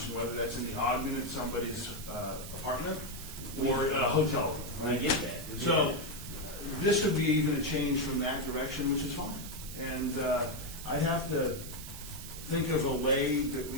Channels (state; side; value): noise; right; hiss, 11 dB below the sound